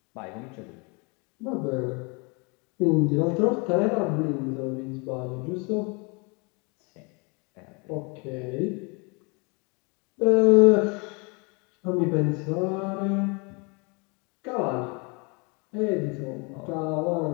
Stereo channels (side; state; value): right; quieter; 31.5 dB